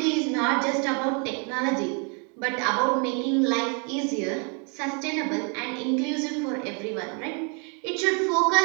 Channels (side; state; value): left; quieter; 37.1 dB